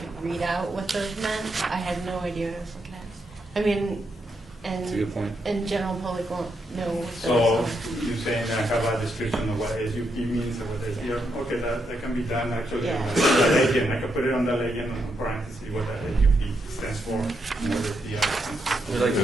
read out what those meant, I had no idea what I was looking at. I mean, That's a good point. and general public won't know what So those you're saying I have a description of what SUP means or what SDR? Okay, that can be done actually. Yeah. Legend, I can put it on the legend in parentheses what the SUP stands for, and what SDR stands for. We like to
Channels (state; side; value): normal; both; correlation 0.81